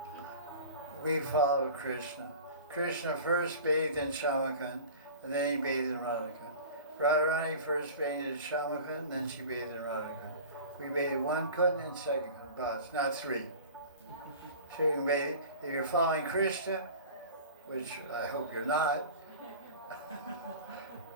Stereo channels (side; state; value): both; inverted; correlation -0.38